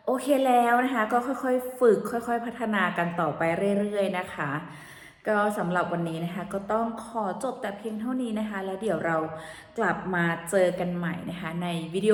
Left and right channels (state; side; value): identical; both; correlation 1.00